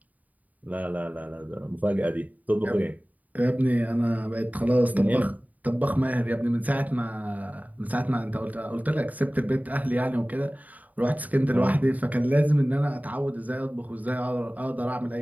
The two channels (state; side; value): late; left; 0.075 ms